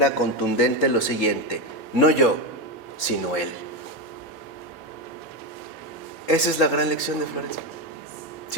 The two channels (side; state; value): both; normal; correlation 0.10